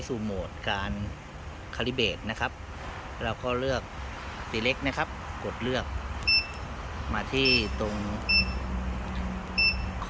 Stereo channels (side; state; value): both; identical; correlation 1.00